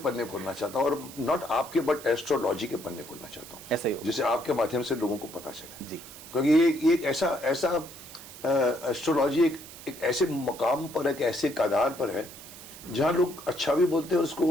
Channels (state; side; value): noise; right; hiss, 16 dB below the sound